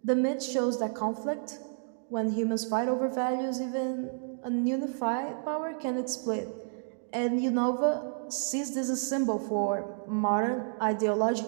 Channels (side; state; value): left; silent; digital silence